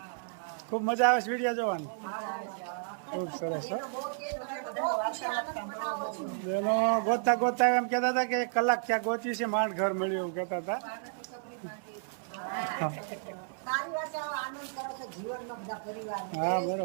ખૂબ મજા આવે છે વિડીયા જોવાની, ખૂબ સરસ। બેનો ગોતતા ગોતતા એમ કહેતા હતા કે 1 કલાક ત્યાં ગોતી છે, માંડ ઘર મળ્યું એવું કહેતા હતા। હા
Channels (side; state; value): left; silent; 56 dB below the other